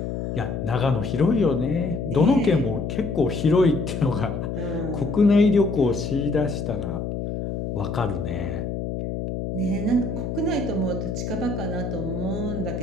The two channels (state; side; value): noise; left; hum, 4 dB below the sound